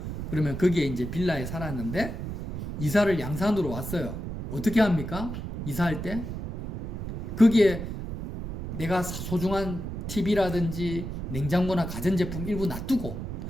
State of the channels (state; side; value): noise; right; rumble, 6 dB below the sound